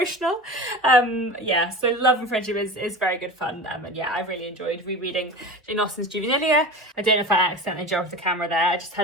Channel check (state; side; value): normal; both; correlation 0.32